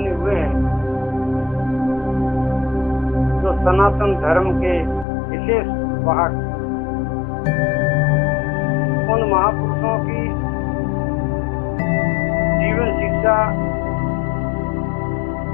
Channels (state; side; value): drops out; right; at 5.1 s